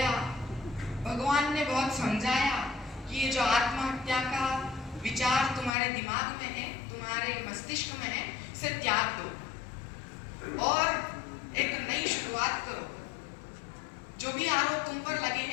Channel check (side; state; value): right; drops out; at 5.7 s